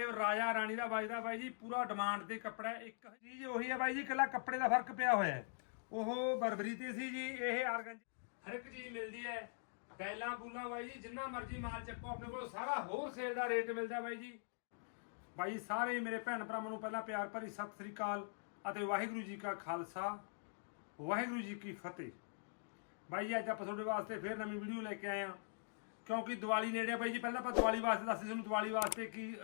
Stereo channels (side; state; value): right; silent; digital silence